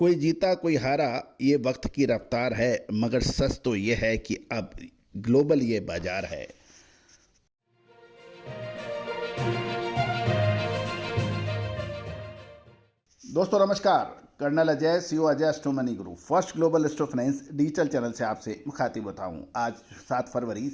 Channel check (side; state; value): both; identical; correlation 1.00